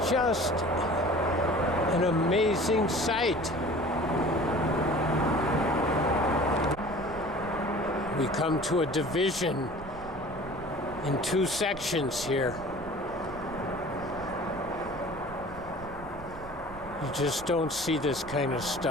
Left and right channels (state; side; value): noise; right; rumble, 16 dB below the sound